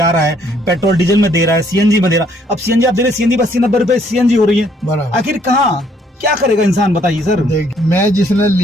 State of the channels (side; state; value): both; normal; correlation 0.66